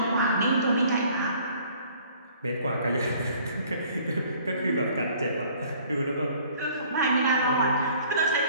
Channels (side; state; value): both; inverted; correlation -0.56